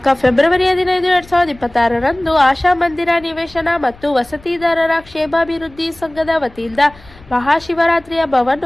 ಫೆಬ್ರವರಿ 15, 2026ರಂದು ಆಶಾ ಮಂದಿರ ನಿವೇಶನ ಮತ್ತು ವಸತಿದಾರರ ಕ್ಷೇಮಾಭಿವೃದ್ಧಿ ಸಂಘದ ವತಿಯಿಂದ ಮಹಾಶಿವರಾತ್ರಿ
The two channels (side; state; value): left; noise; rumble, 24 dB below the sound